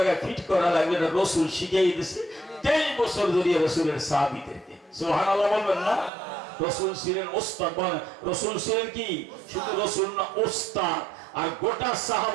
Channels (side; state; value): left; drops out; at 6.1 s